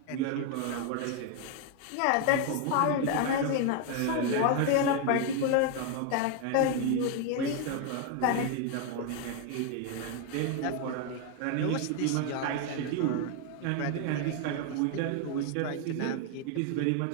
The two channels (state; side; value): different; both; correlation 0.01